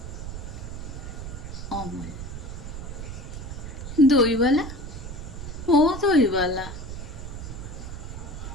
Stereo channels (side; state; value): right; noise; rumble, 8 dB below the sound